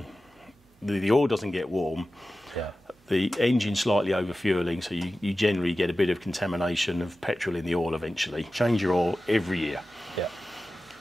oil doesn't get warm. Yeah. The engine slightly over-fueling, so you generally get a bit of contamination of petrol in the oil eventually. Change your oil every year. Yeah.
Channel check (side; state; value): both; normal; correlation 0.94